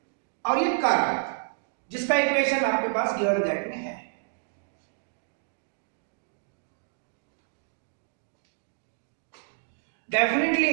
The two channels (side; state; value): left; silent; 59 dB below the other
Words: और ये कर्व जिसका इक्वेशन आपके पास गिवन दैट में है।